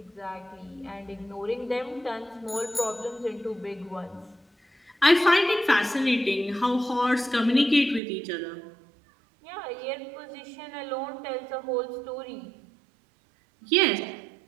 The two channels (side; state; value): left; drops out; at 8.0 s